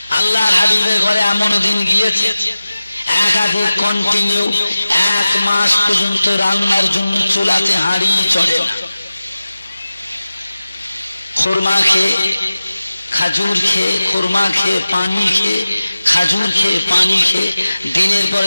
আল্লাহর হাবিবের ঘরে এমন দিন গিয়েছে একাধিক কন্টিনিউ 1 মাস পর্যন্ত রান্নার জন্য চুলাতে হাঁড়ি চড়ে না। খুরমা খেয়ে, খাজুর খেয়ে, খুরমা খেয়ে, পানি খেয়ে, খাজুর খেয়ে, পানি খেয়ে দিনের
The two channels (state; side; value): inverted; both; correlation -0.96